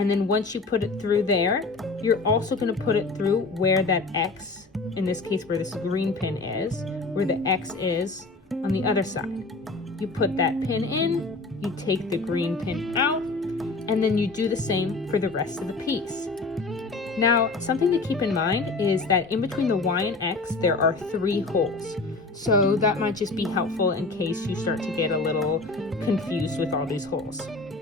then once you put it through there, you're also going to put it through where that X, in this case where this green pin is, where the X is on the other side. You put that pin in, you take the green pin out, and then you do the same for the rest of the piece. Now, something to keep in mind is that in between the Y and X, there are 3 holes. So that might just be helpful in case you start to get a little confused with all these holes.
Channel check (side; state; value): right; quieter; 3.6 dB